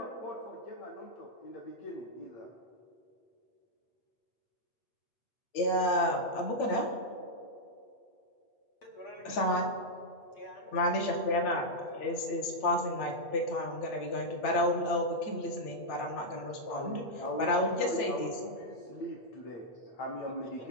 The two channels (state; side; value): late; right; 8.9 ms